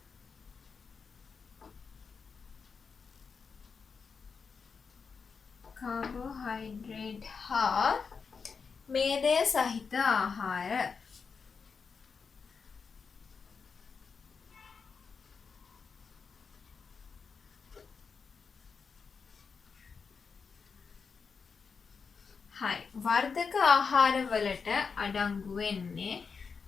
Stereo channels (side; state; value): right; quieter; 5.5 dB